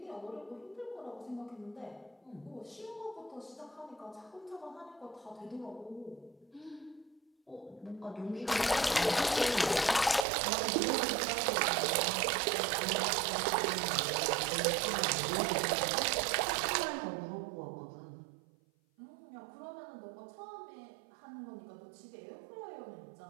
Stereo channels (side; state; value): left; drops out; at 10.2 s